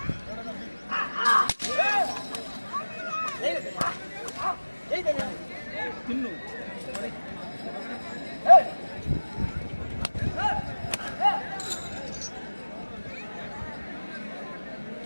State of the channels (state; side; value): inverted; both; correlation -1.00